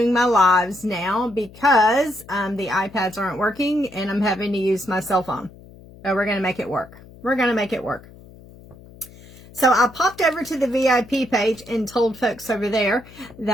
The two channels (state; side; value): noise; left; hum, 21 dB below the sound